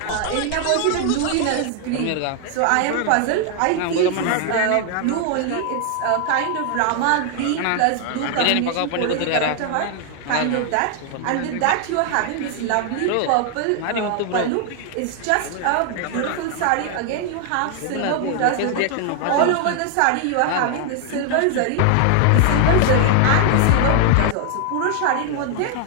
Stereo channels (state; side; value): different; both; correlation 0.00